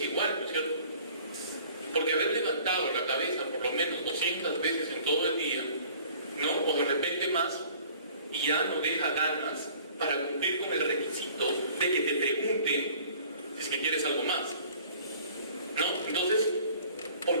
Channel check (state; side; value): inverted; both; correlation -0.50